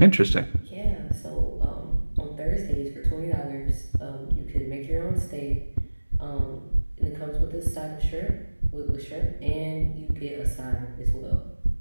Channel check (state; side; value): inverted; both; correlation -1.00